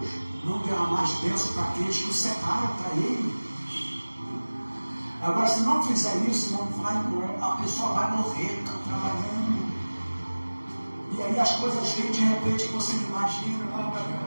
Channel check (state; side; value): inverted; both; correlation -1.00